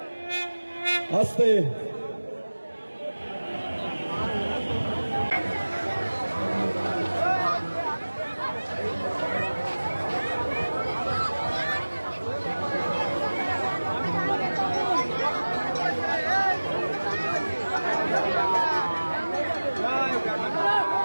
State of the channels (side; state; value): both; inverted; correlation -1.00